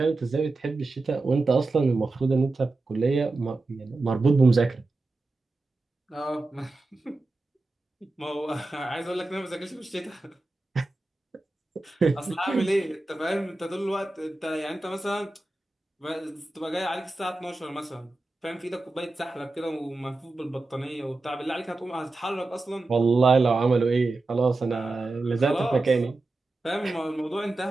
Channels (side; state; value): left; quieter; 3.2 dB